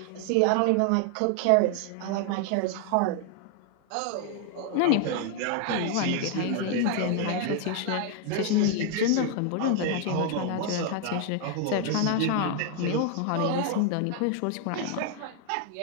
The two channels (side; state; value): both; different; correlation 0.00